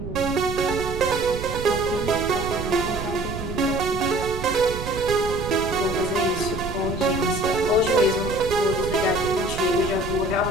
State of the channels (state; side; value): noise; right; rumble, 7 dB below the sound